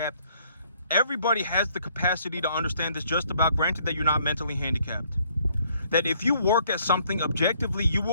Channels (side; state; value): both; inverted; correlation -0.65